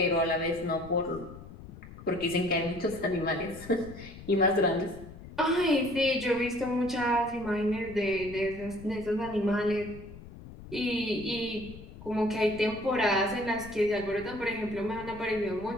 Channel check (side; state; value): left; noise; rumble, 16 dB below the sound